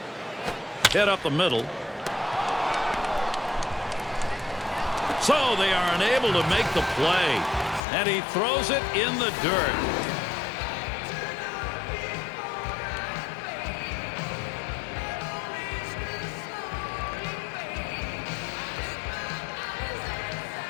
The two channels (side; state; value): right; drops out; at 7.8 s